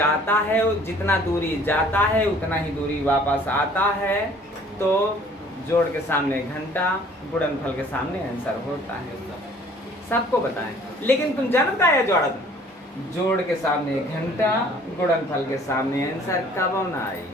है, जितना दूरी जाता है उतना ही दूरी वापस आता है, तो जोड़ के सामने घंटा, गुणनफल के सामने आंसर होता है। सबको बताएं, लेकिन तुम जानता है जोड़त, जोड़ के सामने घंटा, गुणनफल के सामने आंसर कब ना आई।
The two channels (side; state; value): both; normal; correlation 0.54